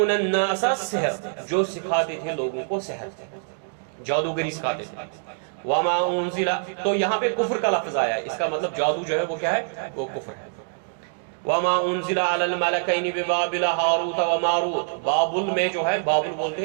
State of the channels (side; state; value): left; silent; digital silence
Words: النَّاسَ السِّحْرَ، جو سکھاتے تھے لوگوں کو سحر، جادوگری سکھاتے تھے۔ وما انزل، تو یہاں پہ کفر کا لفظ آیا ہے، اس کا مطلب جادو جو ہے وہ کیا ہے؟ وہ کفر ہے۔ وما انزل علی الملکین ببابل ہاروت و ماروت، بابل میں جو ہے، بابل